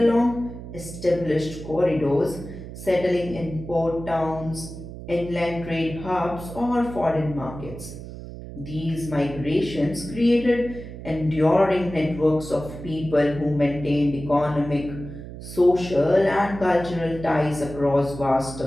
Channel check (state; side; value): noise; right; hum, 12 dB below the sound